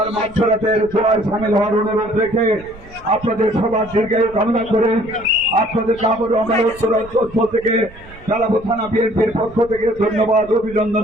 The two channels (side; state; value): right; noise; rumble, 21 dB below the sound